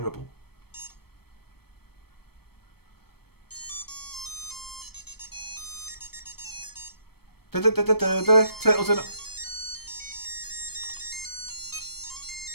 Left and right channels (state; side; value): late; right; 0.96 ms